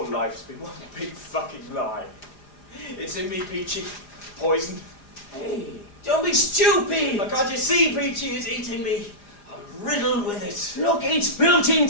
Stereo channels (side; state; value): right; late; 4.9 ms